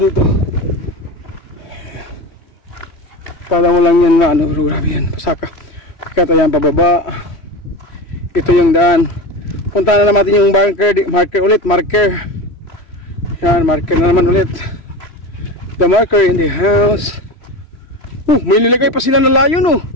dito. Kala mo lang yan na ano, grabe yan, pasaka. Kata yan pababa. Ito yung daan. Punta na natin yung marker ulit, marker. Yan, marker na naman ulit. The marker in the house. May nilagay pa sila na layon oh.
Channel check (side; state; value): right; late; 3.1 ms